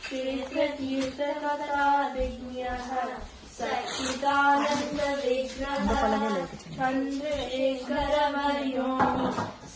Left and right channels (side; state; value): both; identical; correlation 1.00